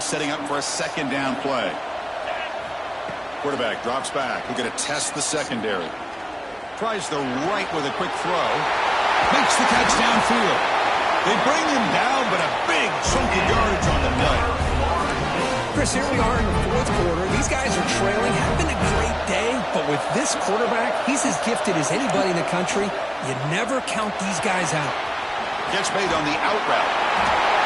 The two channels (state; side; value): identical; both; correlation 1.00